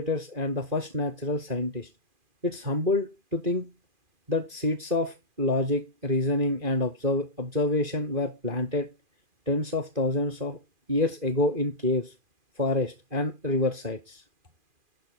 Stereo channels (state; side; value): late; left; 2.4 ms